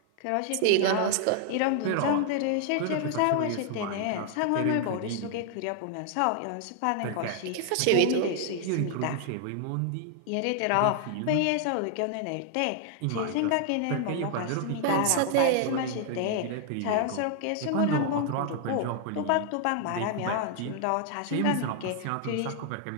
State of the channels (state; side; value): different; both; correlation 0.00